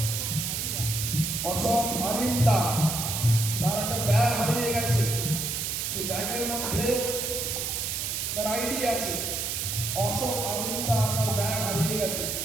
অশোক অরিন্দা তার একটা ব্যাগ হারিয়ে গেছে, সেই ব্যাগের মধ্যে তার আইডি আছে। অশোক অরিন্দা তার ব্যাগ হারিয়ে গেছে,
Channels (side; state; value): right; noise; hiss, 2 dB below the sound